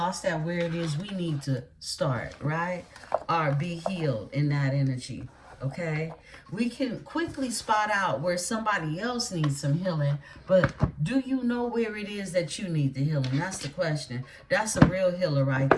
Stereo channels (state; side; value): identical; both; correlation 1.00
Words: at where it is we need to start, right? Or be healed in that energy, okay? We can quickly spot out where somebody else needs some healing, but do you know where it is that you need the healing? That's the question. That's a real healer right